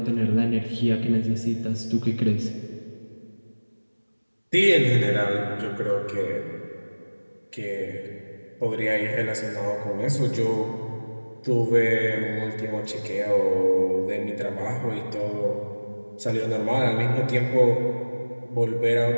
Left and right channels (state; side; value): inverted; both; correlation -1.00